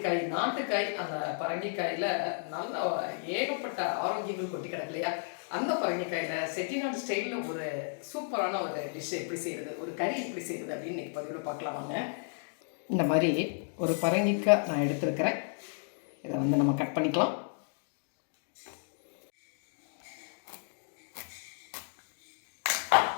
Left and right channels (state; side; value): silent; right; digital silence